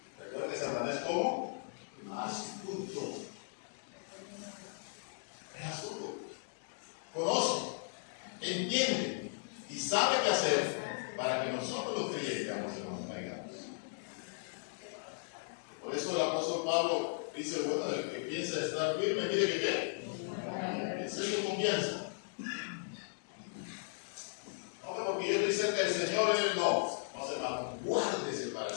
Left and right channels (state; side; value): silent; right; digital silence